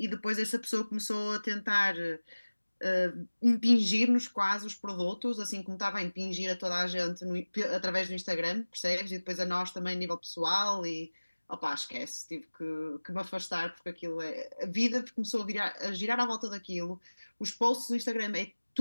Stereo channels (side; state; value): both; inverted; correlation -1.00